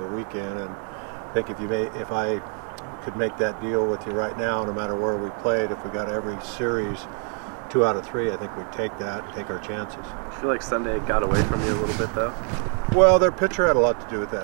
weekend. And I think if I could make that deal with you right now, no matter where we played, if we got every series 2 out of 3, I think we'd take that and take our chances. I feel like Sunday got away from you a little bit, though. Well, their pitcher had a lot to do with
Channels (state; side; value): quieter; left; 39.4 dB